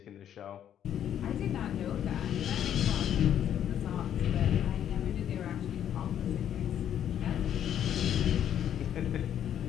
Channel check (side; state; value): right; quieter; 10.0 dB